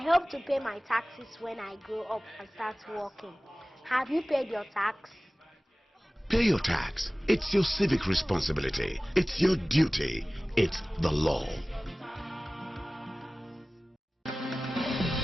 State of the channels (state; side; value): normal; both; correlation 0.98